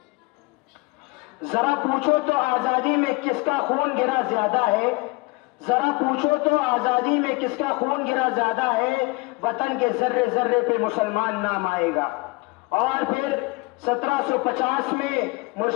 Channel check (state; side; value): quieter; right; 25.5 dB